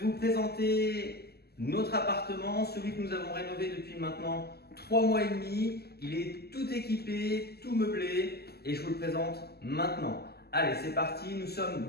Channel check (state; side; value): late; right; 0.46 ms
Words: vous présenter notre appartement, celui que nous avons rénové depuis maintenant 3 mois et demi. Il est tout équipé, tout meublé et je vous le présente maintenant. Allez, c'est parti. Nous